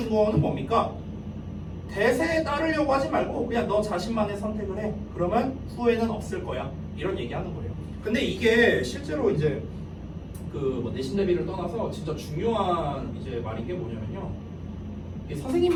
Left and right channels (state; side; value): identical; both; correlation 1.00